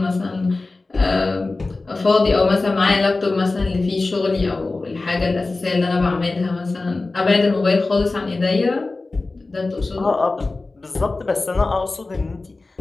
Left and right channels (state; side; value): quieter; right; 3.4 dB